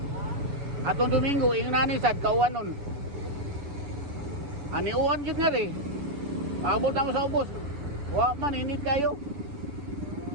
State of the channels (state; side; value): late; left; 7.0 ms